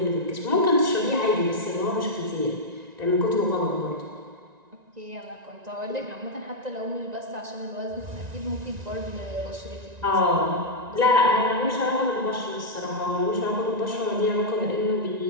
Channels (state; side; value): late; left; 1.9 ms